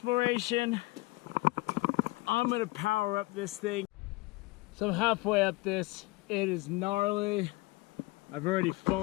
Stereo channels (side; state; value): right; quieter; 22.3 dB